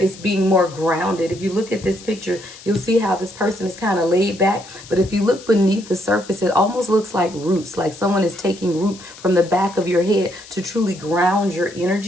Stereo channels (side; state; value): left; noise; hiss, 18 dB below the sound